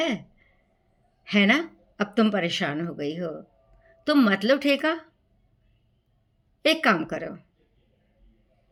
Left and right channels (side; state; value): both; identical; correlation 1.00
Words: ना? अब तुम परेशान हो गई हो, तुम मत लो ठेका। एक काम करो,